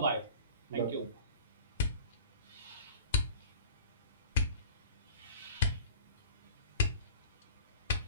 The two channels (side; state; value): both; inverted; correlation -0.41